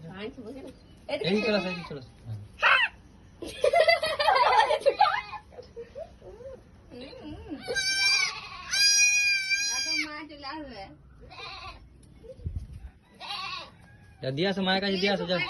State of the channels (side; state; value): both; identical; correlation 1.00